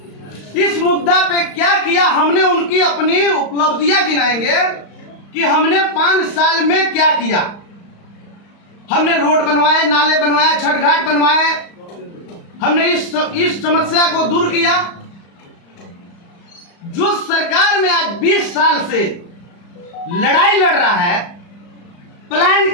इस मुद्दा पे क्या किया। हमने उनकी अपनी उपलब्धियां गिनाएंगे कि हमने 5 साल में क्या किया। हमने रोड बनवाए, नाले बनवाए, छठ घाट बनवाए, हमने इस समस्या को दूर किया। जो सरकार में आज 20 साल से लड़ाई लड़ रहा है,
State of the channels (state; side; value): late; right; 35 ms